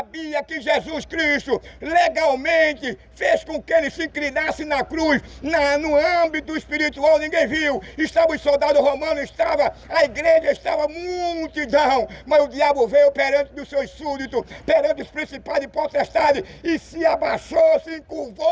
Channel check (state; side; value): identical; both; correlation 1.00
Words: que Jesus Cristo legalmente fez com que ele se inclinasse na cruz, no âmbito espiritual, ninguém viu. Estavam os soldados romanos, a igreja, estava multidão, mas o diabo veio perante dos seus súditos, perante os principais e potestades, e se abaixou, se